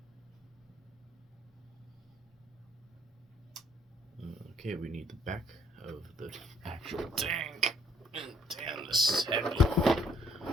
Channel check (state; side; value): normal; both; correlation 0.65